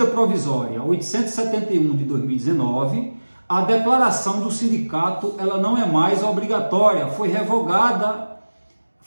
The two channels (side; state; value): both; inverted; correlation -1.00